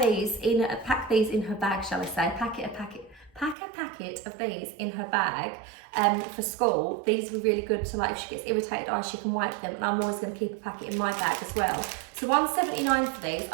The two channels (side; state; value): left; drops out; at 3.6 s